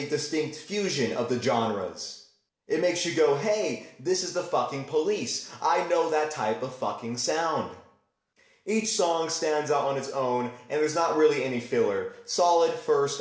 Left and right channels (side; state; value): both; identical; correlation 1.00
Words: distinct fusion of the genres. It makes you go, hey, this is the fucking Police. I know that type of fucking sound. Each song stands out on its own, and there's not really any filler. Solid first